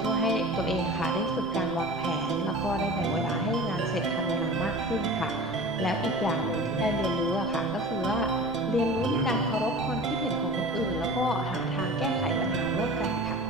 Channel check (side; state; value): right; noise; rumble, 18 dB below the sound